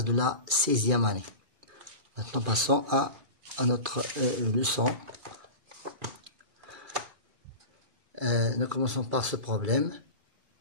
de la 16e année. Maintenant, passons à notre leçon. Nous commençons par ce problème.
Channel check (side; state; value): left; late; 1.4 ms